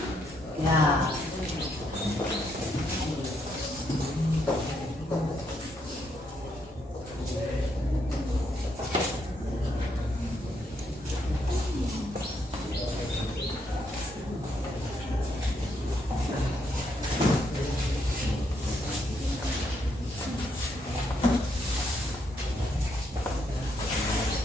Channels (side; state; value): both; normal; correlation 0.76